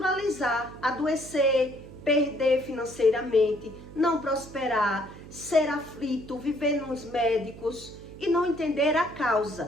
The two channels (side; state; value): right; noise; hum, 17 dB below the sound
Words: adoecer, perder financeiramente, não prosperar, ser aflito, viver nos médicos e não entender a